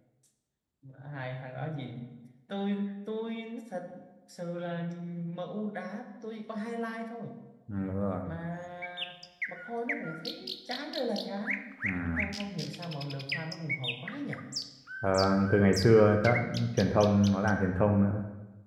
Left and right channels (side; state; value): both; identical; correlation 1.00